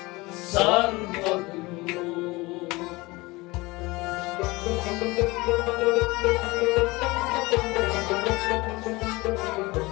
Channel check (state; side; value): quieter; right; 22.6 dB